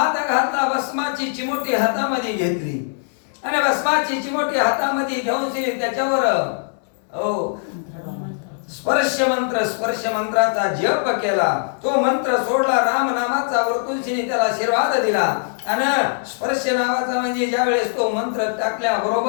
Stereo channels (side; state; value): right; silent; digital silence